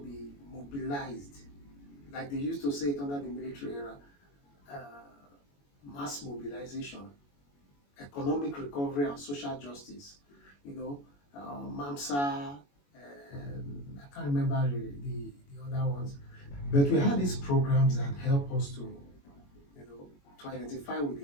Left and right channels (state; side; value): late; right; 21 ms